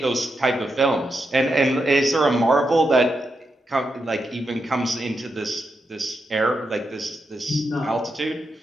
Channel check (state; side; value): normal; both; correlation 0.85